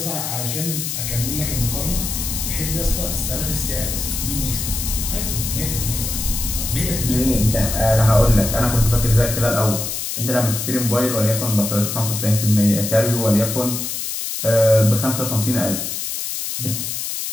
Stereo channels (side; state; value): left; noise; hiss, 4 dB below the sound